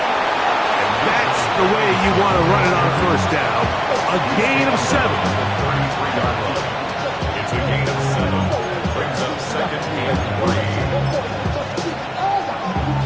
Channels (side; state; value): both; identical; correlation 1.00